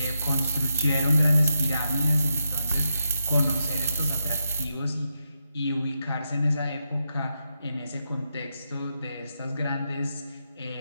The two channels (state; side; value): inverted; both; correlation -0.84